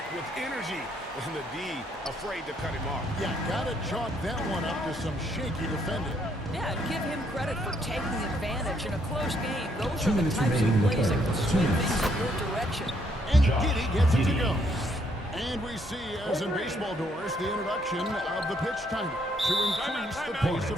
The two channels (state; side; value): normal; both; correlation 0.70